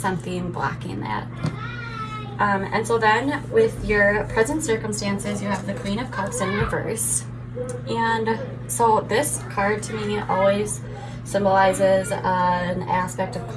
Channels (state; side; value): identical; both; correlation 1.00